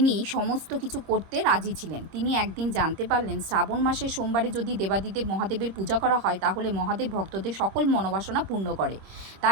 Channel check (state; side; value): late; left; 26 ms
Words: সমস্ত কিছু করতে রাজি ছিলেন। তিনি একদিন জানতে পারলেন, শ্রাবণ মাসের সোমবারে যদি দেবাদিদেব মহাদেবের পূজা করা হয় তাহলে মহাদেব ভক্তদের সকল মনোবাসনা পূর্ণ করে।